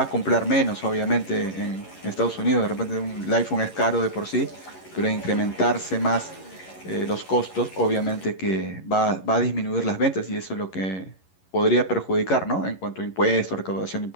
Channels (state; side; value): late; right; 11 ms